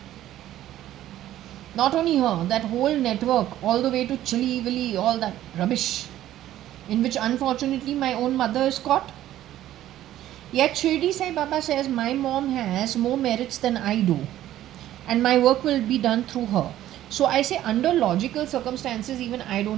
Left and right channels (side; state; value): left; quieter; 13.2 dB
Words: Not only her, that whole network, all the way to Chili Willy, all that rubbish, in which unfortunately my own mother is caught. Yet Shirdi Sai Baba says my mom has more merits than I do, and my work will be done through her. So I say, under logical circumstances, even I